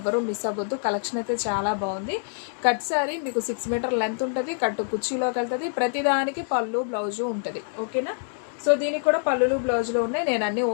మిస్ అవ్వద్దు. కలెక్షన్ అయితే చాలా బాగుంది. కట్ శారీ మీకు 6 మీటర్ లెంత్ ఉంటుంది, కట్టు కుర్చీలోకి వెళ్తుంది. ప్రతిదానికి పళ్ళు బ్లౌజు ఉంటుంది. ఓకేనా? సో దీనికి కూడా పళ్ళులు బ్లౌజులు ఉన్నాయి. నేను అన్నీ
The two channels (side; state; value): right; silent; digital silence